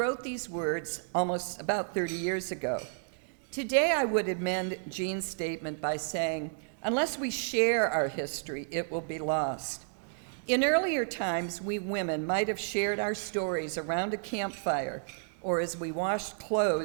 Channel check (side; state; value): left; silent; digital silence